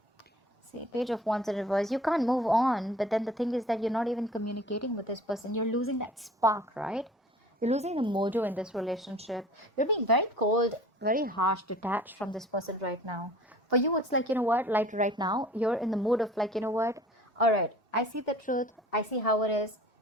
Page of Wands in reverse. You can't move on, but then the thing is that you're not even communicating with this person. You're losing that spark, right? You're losing the mojo in this relationship. You're being very cold, very harsh, detached from this person right now. For you, it's like, you know what, like right now, you're in the mood of like, you know what, all right, I see the truth. I see how it is.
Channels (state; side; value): normal; both; correlation 0.46